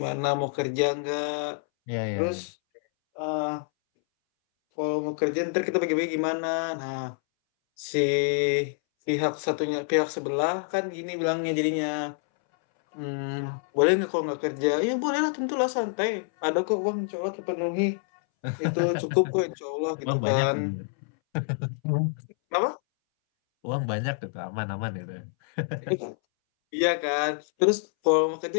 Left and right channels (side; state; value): right; silent; 60 dB below the other